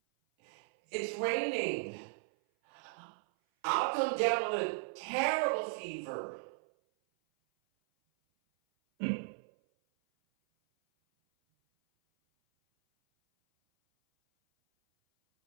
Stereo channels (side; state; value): left; silent; 54 dB below the other